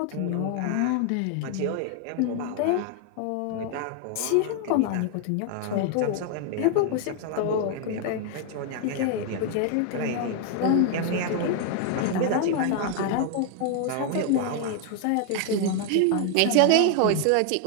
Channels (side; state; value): both; different; correlation 0.00